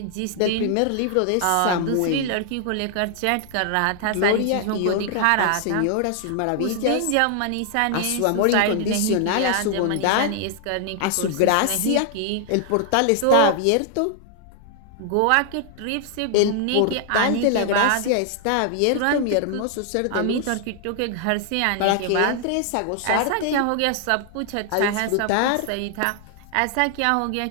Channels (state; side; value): different; both; correlation 0.00